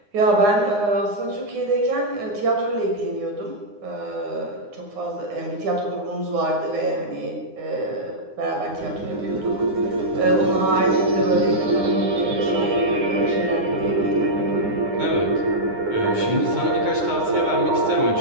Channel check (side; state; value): left; late; 9.7 ms